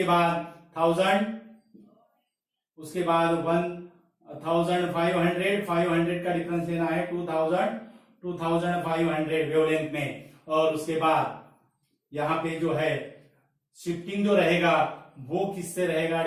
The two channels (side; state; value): both; identical; correlation 1.00